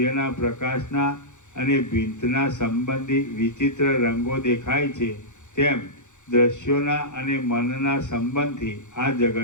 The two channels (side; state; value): right; late; 0.85 ms